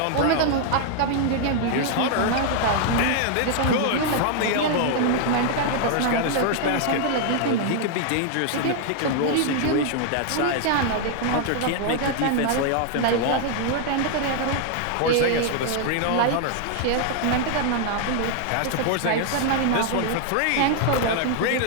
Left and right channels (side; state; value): both; different; correlation 0.00